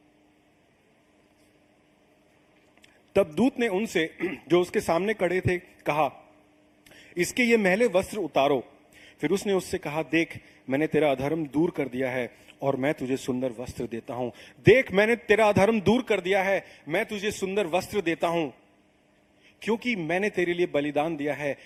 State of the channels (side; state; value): both; identical; correlation 1.00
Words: खड़े थे कहा, इसके ये मैले वस्त्र उतारो। फिर उसने उससे कहा, देख मैंने तेरा अधर्म दूर कर दिया है और मैं तुझे सुंदर वस्त्र देता हूं। देख मैंने तेरा अधर्म दूर कर दिया है, मैं तुझे सुंदर वस्त्र देता हूं, क्योंकि मैंने तेरे लिए बलिदान दिया है,